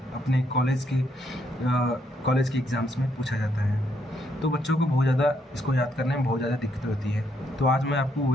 अपने कॉलेज के एग्ज़ाम्स में पूछा जाता है। तो बच्चों को बहुत ज़्यादा इसको याद करने में बहुत ज़्यादा दिक्कत होती है। तो आज मैं आपको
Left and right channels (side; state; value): both; normal; correlation 0.74